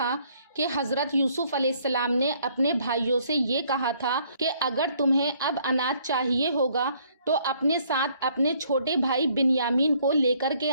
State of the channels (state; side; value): inverted; both; correlation -0.65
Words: कि हज़रत यूसुफ अलैहिस्सलाम ने अपने भाइयों से ये कहा था कि अगर तुम्हें अब अनाज चाहिए होगा तो अपने साथ अपने छोटे भाई बिन्यामीन को लेकर के